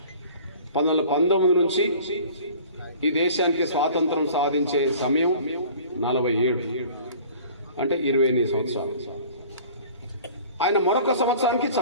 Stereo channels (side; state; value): both; inverted; correlation -0.46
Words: 1919 నుంచి ఈ దేశానికి స్వాతంత్రం సాధించే సమయం 47, అంటే 28 సంవత్సరాలు. ఆయన మరొక సంవత్సరానికి